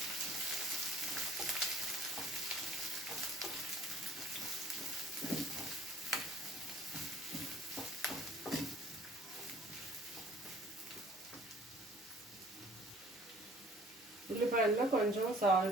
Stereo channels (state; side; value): normal; both; correlation 0.53